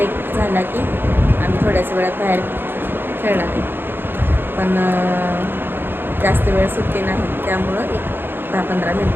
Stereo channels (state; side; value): late; left; 0.10 ms